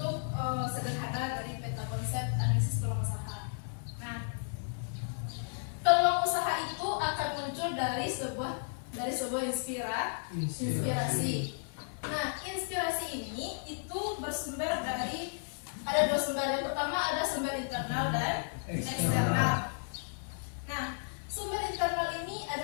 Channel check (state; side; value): silent; right; 55 dB below the other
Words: sederhana dari peta konsep analisis peluang usaha. Nah, peluang usaha itu akan muncul dari sebuah inspirasi. Nah, inspirasi ini itu bersumber dari ada dua sumber. Yang pertama ada sumber internal dan eksternal. Nah, sumber internal ini